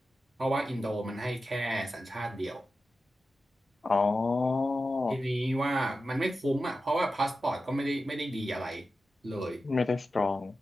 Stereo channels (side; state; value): both; normal; correlation 0.92